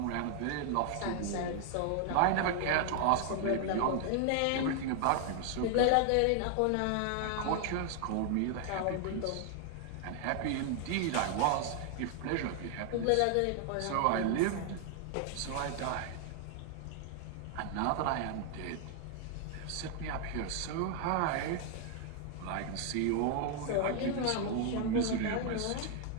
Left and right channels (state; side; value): different; both; correlation 0.00